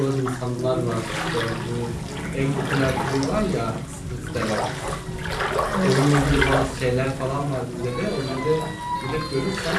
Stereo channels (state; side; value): identical; both; correlation 1.00